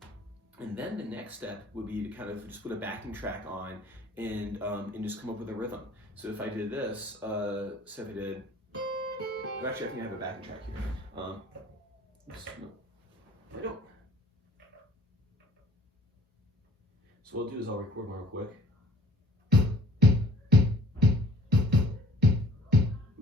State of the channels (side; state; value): both; normal; correlation 0.55